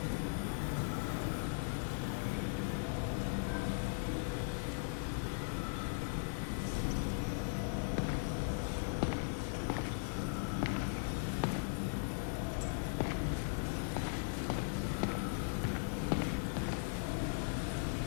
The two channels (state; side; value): silent; right; 52 dB below the other